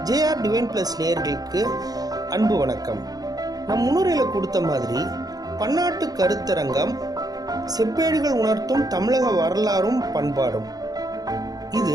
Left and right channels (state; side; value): late; left; 0.18 ms